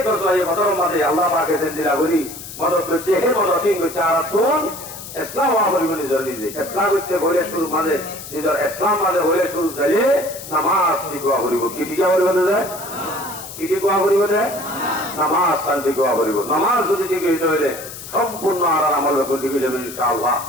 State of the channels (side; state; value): left; noise; hiss, 12 dB below the sound